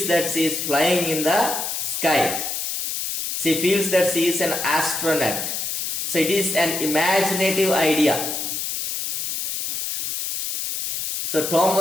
that she is flying in the sky. She feels that she is an astronaut. So it is an imaginative idea. So Tom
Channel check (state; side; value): noise; left; hiss, 3 dB below the sound